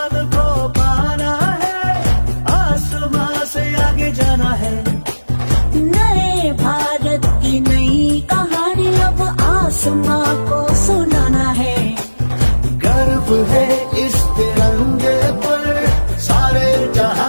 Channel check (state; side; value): inverted; both; correlation -1.00